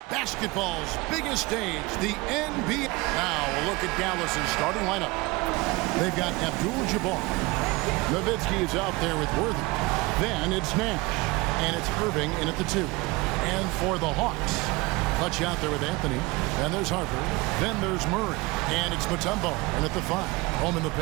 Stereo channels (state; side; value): quieter; left; 23.4 dB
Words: Basketball's biggest stage, the NBA. Now a look at Dallas's starting lineup. They've got Abdul-Jabbar. Nowitzki is out there with Worthy. Then it's Nash. And it's Irving in at the 2. And for the Hawks, Clutch out there with Anthony. Then there's Harper. Then there's Murray. And it's Mutombo in at the 5. Home in the